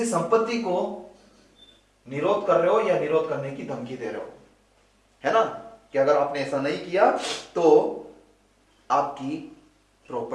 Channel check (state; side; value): identical; both; correlation 1.00